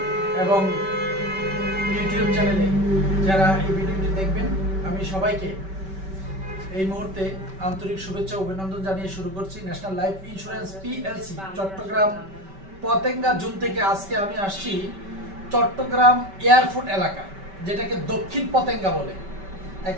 এবং ইউটিউব চ্যানেলে যারা এই ভিডিওটি দেখবেন, আমি সবাইকে এই মুহূর্তে আন্তরিক শুভেচ্ছা ও অভিনন্দন জানিয়ে শুরু করছি। National Life Insurance PLC Chattogram Patenga zone থেকে আজকে আমি আসছি চট্টগ্রাম এয়ারপোর্ট এলাকা, যেটাকে দক্ষিণ পতেঙ্গা বলে।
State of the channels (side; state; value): left; late; 5.2 ms